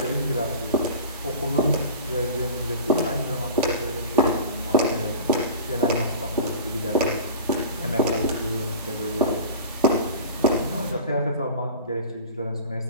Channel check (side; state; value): both; inverted; correlation -0.37